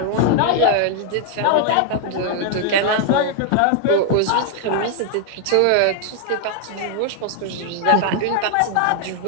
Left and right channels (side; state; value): both; different; correlation 0.00